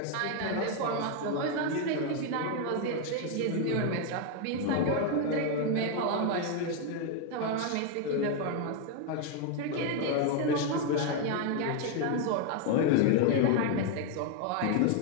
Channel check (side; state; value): both; different; correlation 0.01